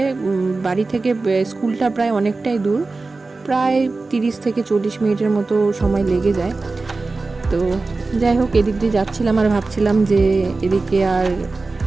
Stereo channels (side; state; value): left; quieter; 3.6 dB